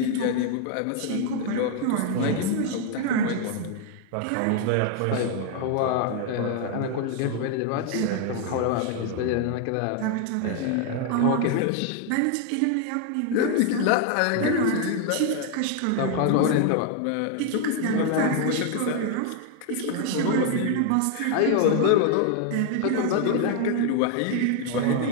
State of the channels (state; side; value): different; both; correlation 0.00